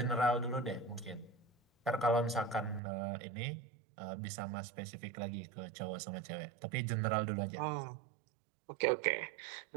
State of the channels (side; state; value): left; drops out; at 2.8 s